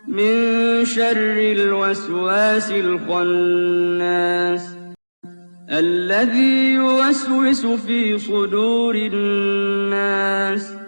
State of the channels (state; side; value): inverted; both; correlation -1.00